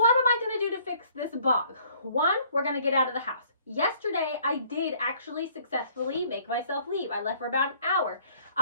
am I going to do to fix this bog? One, we're going to get out of the house. Yesterday, I did actually successfully make myself leave. I left for about an hour.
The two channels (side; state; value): both; inverted; correlation -0.59